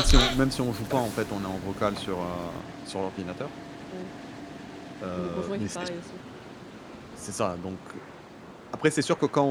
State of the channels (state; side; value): identical; both; correlation 1.00